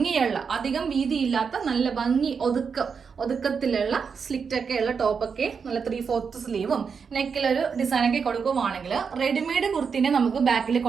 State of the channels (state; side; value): quieter; left; 6.0 dB